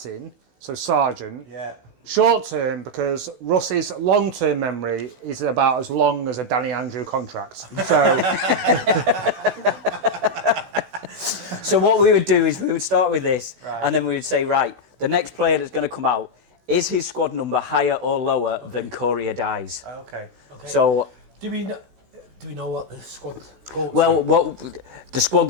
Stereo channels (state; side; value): late; left; 16 ms